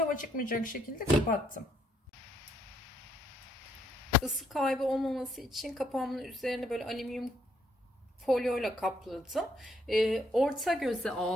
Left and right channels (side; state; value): both; normal; correlation 0.71